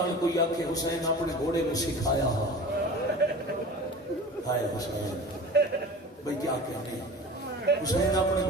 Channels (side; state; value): both; normal; correlation 0.37